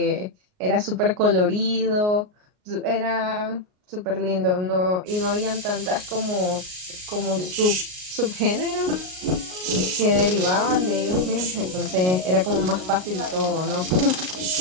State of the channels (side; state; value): left; late; 38 ms